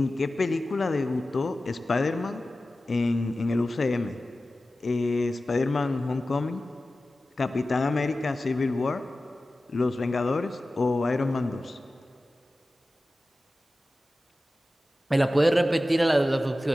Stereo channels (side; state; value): both; normal; correlation 0.95